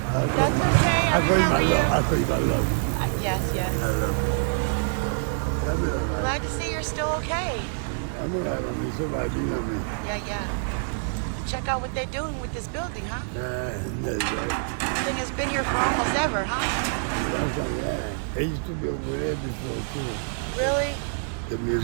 call you my love. I'll call you my love. Yes. I love you. I'm all right. Glad to see you're still okay. I'm all right on me. Somebody be on me. Yeah. Check out what they're doing with this building, huh? That's right. And it's been here for almost ever, huh? Yeah. They used to be over there before, too. Really? The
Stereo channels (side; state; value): left; silent; digital silence